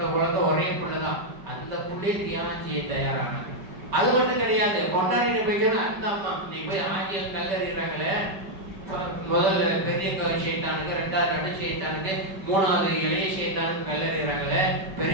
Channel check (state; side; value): late; left; 5.2 ms